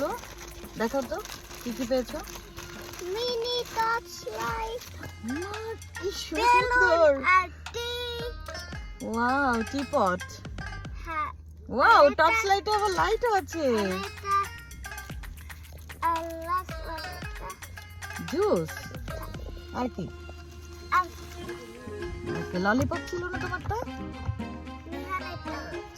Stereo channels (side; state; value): both; identical; correlation 1.00